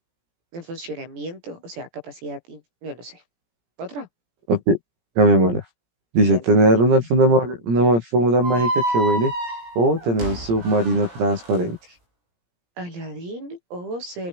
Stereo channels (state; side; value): late; left; 17 ms